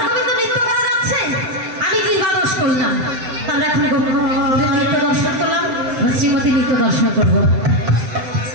গোবিন্দ নৃত্য করা যাচ্ছে আমি কি বাদস করলাম তাহলে এখন গোবিন্দের নৃত্য দর্শন করলাম শ্রীমতী নৃত্য দর্শন করবো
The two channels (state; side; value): late; left; 7.8 ms